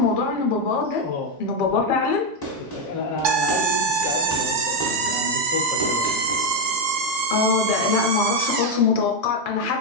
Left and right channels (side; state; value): both; normal; correlation 0.05